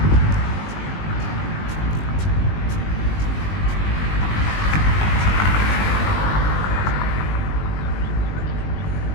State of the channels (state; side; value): late; right; 20 ms